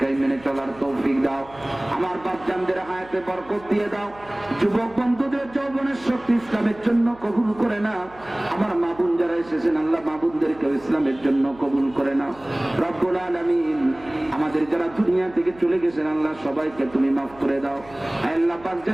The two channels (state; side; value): noise; right; hum, 23 dB below the sound